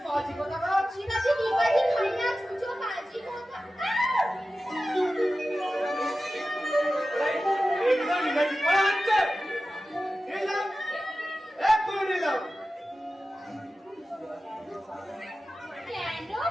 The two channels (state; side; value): normal; both; correlation 0.95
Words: শিবাজি ডিগবাজি খাইয়া ছুঁচো বাজি কথা। কেন